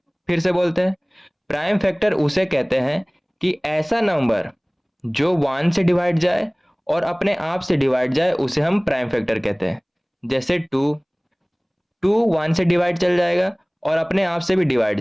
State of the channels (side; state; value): both; identical; correlation 1.00